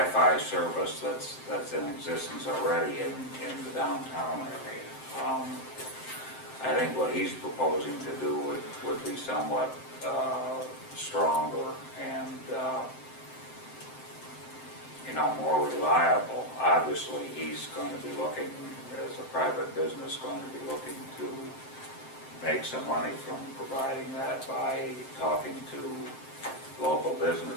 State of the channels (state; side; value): late; right; 7.7 ms